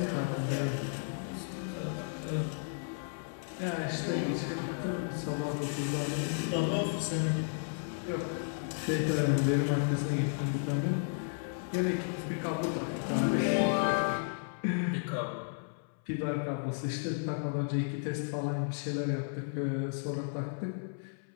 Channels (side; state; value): right; silent; 55 dB below the other